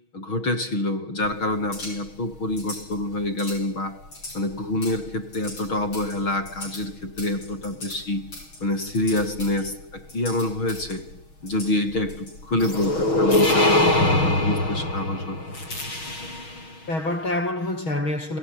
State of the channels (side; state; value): right; late; 6.3 ms